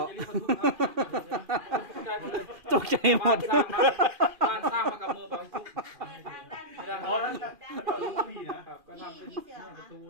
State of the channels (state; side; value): late; left; 2.4 ms